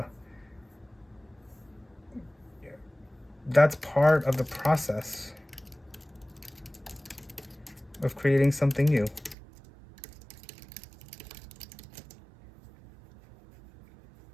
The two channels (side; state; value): left; drops out; at 9.3 s